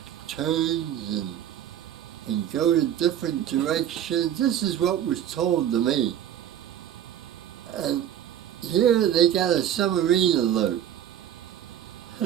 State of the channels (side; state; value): left; quieter; 10.5 dB